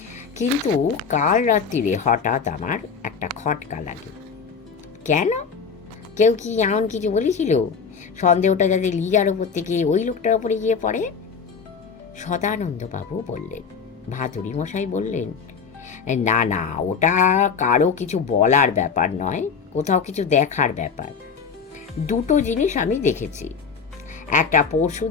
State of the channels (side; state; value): right; quieter; 5.9 dB